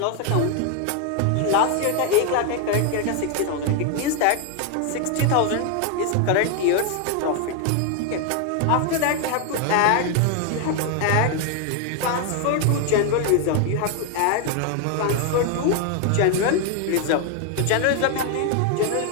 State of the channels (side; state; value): both; different; correlation 0.01